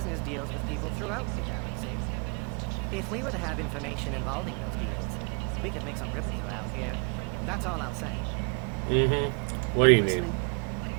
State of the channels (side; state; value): left; quieter; 37.2 dB